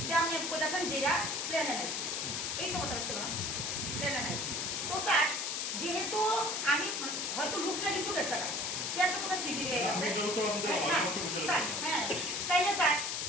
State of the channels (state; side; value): noise; left; hiss, 1 dB below the sound